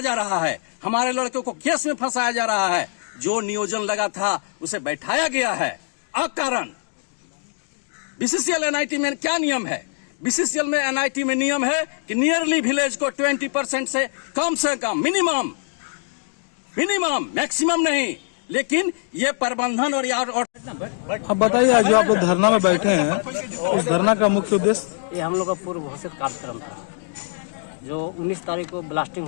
जा रहा है, हमारे लड़कों को केस में फंसाया जा रहा है। जो नियोजन लगा था उसे बैठाया गया है अकारण। BCCL NIT में क्या नियम है? BCCL में NIT में नियम है कि नियरली विलेज को 20% से कम मिनिमम, मैक्सिमम नहीं। लेकिन ये प्रबंधन और यार और अब बताइए, जो आप लोग धरना में बैठे हैं, उस धरना का मुख्य उद्देश्य? ये हम लोग का पूर्व घोषित कार्यक्रम था, जो 19 तारीख को ब्लास्टिंग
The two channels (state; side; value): silent; right; digital silence